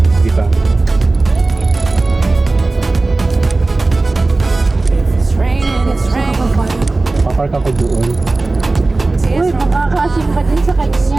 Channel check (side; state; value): left; quieter; 3.2 dB